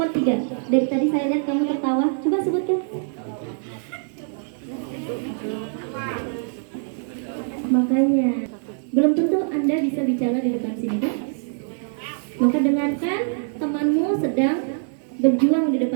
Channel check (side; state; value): left; silent; digital silence